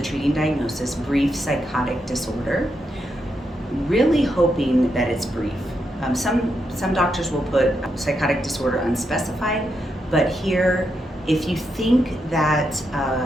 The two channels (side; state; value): both; normal; correlation 0.83